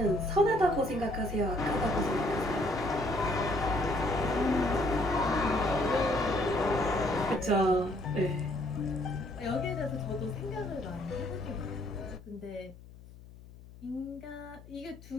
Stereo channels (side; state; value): left; noise; hum, 19 dB below the sound